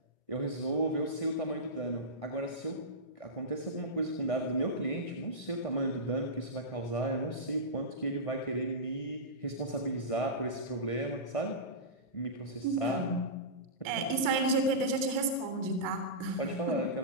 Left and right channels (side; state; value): right; late; 1.5 ms